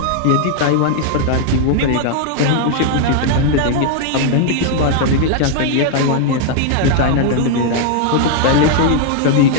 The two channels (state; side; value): different; both; correlation 0.00